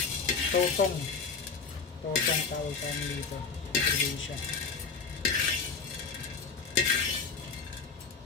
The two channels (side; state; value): right; quieter; 5.3 dB